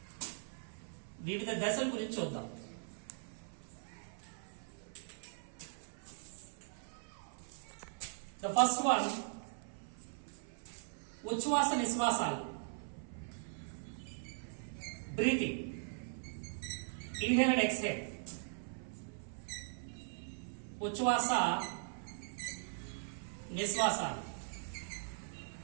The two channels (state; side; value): silent; left; 51 dB below the other